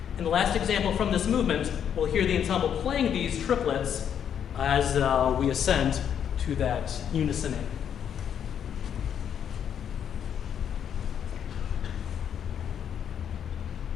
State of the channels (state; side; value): quieter; right; 8.7 dB